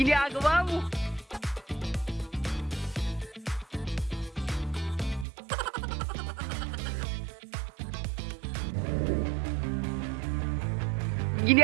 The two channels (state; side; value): drops out; left; at 5.2 s